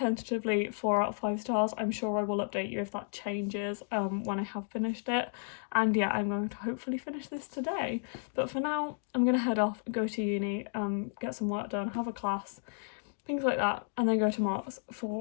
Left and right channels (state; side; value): silent; right; digital silence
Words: 4 out of 5 stars. I'm sure I will update you if that changes when I have finished it. And yeah, I'm going to hopefully finish this today. But for now, I'm gonna head off, go to uni, get some work done, have a class, things like that, and then go to Mark's